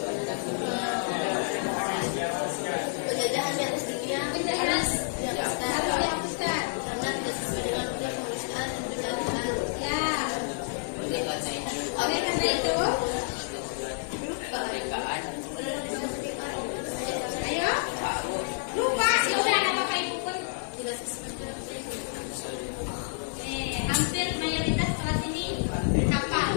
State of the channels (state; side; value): silent; right; 57 dB below the other